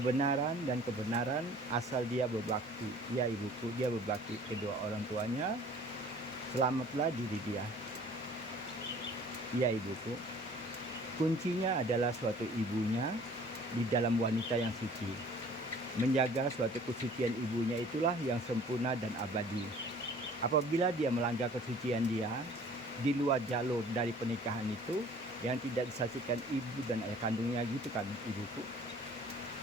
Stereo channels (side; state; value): both; normal; correlation 0.50